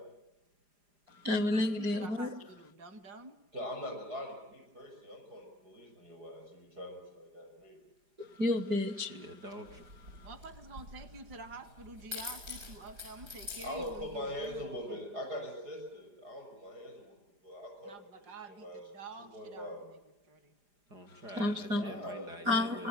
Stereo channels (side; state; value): left; late; 4.9 ms